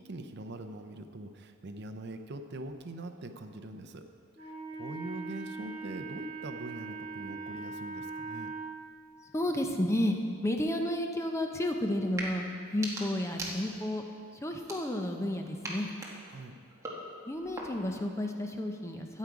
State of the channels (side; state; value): both; normal; correlation 0.72